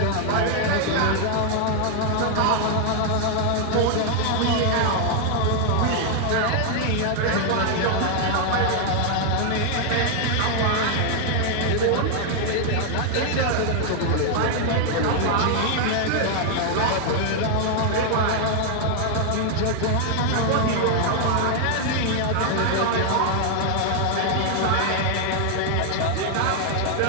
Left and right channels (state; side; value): different; both; correlation 0.00